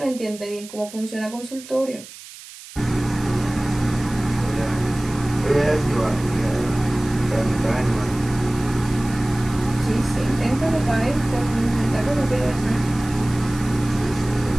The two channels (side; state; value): right; noise; hiss, 17 dB below the sound